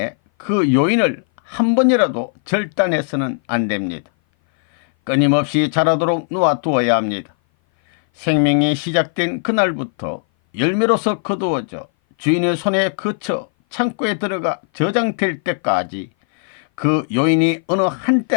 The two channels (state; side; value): silent; right; 58 dB below the other